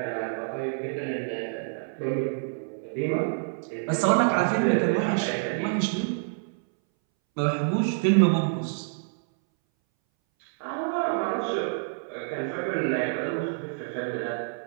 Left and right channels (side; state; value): left; silent; 60 dB below the other